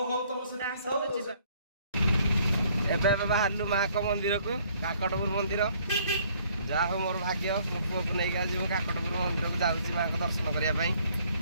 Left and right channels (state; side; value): inverted; both; correlation -0.62